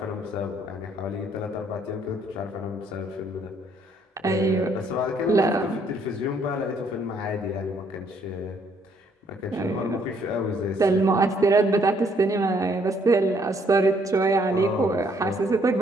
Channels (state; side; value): normal; both; correlation 0.67